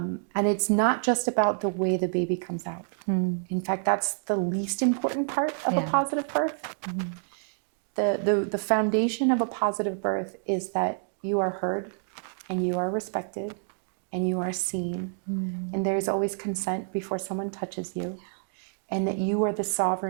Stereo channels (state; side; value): silent; left; digital silence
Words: it's not just about the way the baby comes out. In fact, that's the least important part of a positive birth. The foundation of a positive birth is that you are heard and you are respected and you are seen. And there's always consent before someone touches you, and that you are the